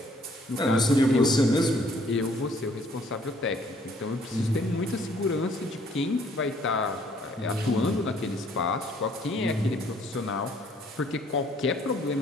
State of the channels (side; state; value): both; normal; correlation 0.62